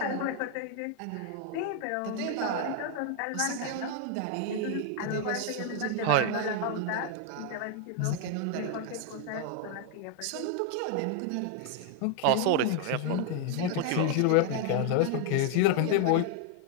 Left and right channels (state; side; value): different; both; correlation 0.00